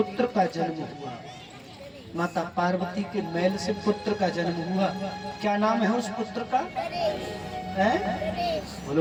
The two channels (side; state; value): both; identical; correlation 1.00